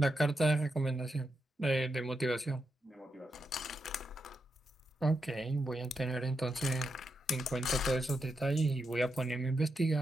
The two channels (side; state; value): both; normal; correlation 0.85